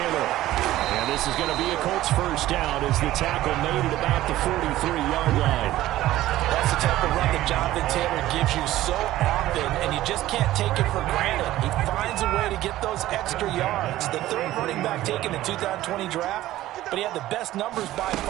And this is going to be a Colts first down as the tackle made it about the 43-yard line. That's the type of run that Jonathan Taylor gives you so often, and you just can't take it for granted. He finds a way to get those extra yards. The third running back taken in the 2020 draft, but he had the best numbers by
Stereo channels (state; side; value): quieter; left; 15.1 dB